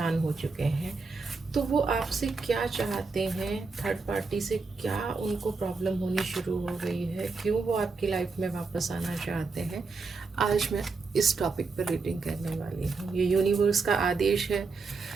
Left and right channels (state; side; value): quieter; left; 4.3 dB